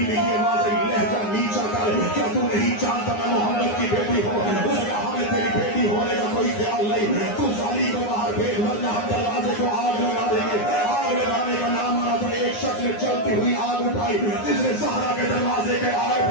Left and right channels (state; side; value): late; right; 9.7 ms